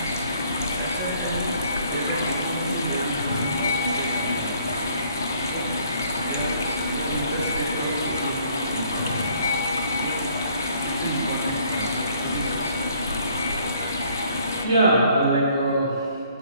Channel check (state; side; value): inverted; both; correlation -0.62